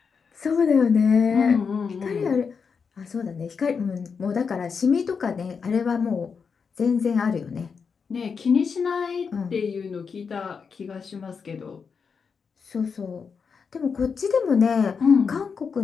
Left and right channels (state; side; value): quieter; right; 5.8 dB